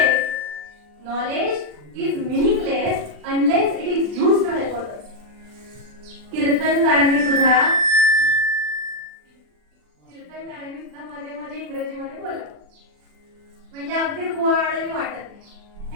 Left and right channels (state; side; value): late; left; 40 ms